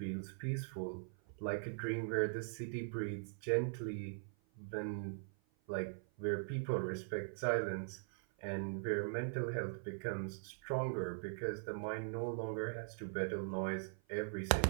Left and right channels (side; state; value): left; silent; 50 dB below the other